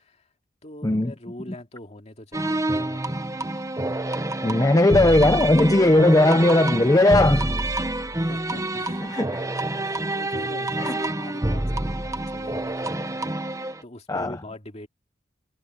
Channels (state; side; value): normal; both; correlation 0.75